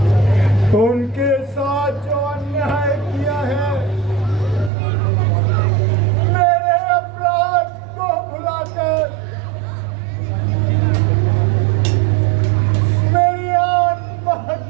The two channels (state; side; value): drops out; left; at 4.7 s